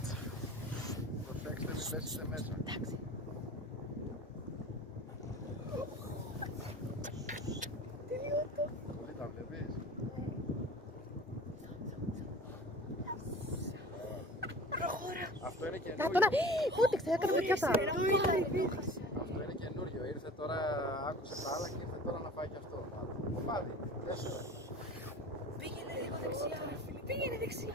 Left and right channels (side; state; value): both; normal; correlation 0.39